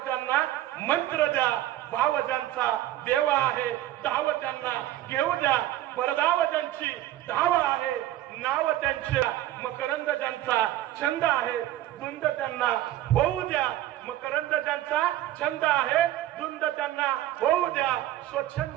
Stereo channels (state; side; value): quieter; left; 14.0 dB